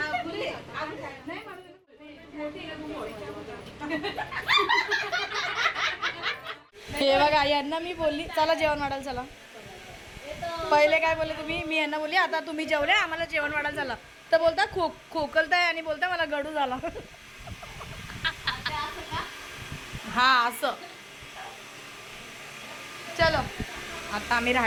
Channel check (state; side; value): identical; both; correlation 1.00